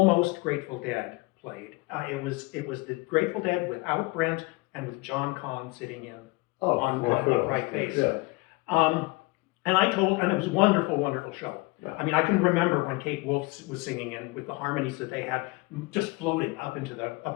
Grateful Dead played. It was the Grateful Dead without Brent and with John Conn sitting in on right face. Yeah. And it was a wonderful, wonderful show. Yeah. I mean, I can remember when Kate Wolf was singing and with the harmonies that they had just floating up into the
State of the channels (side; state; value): right; quieter; 24.0 dB